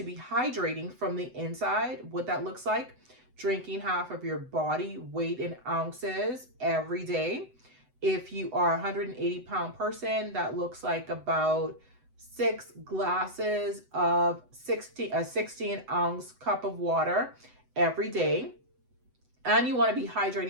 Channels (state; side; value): late; left; 7.9 ms